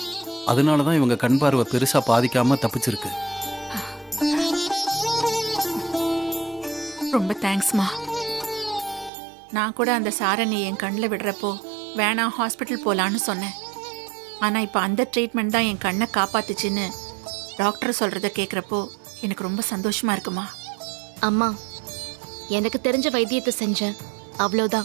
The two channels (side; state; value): left; drops out; at 9.1 s